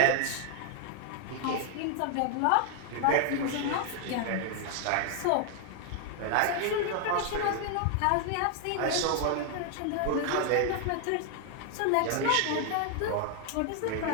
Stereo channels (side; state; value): both; different; correlation 0.00